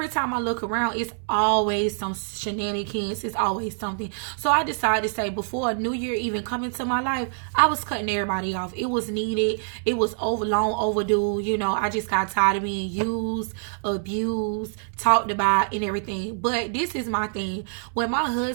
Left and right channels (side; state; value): left; silent; digital silence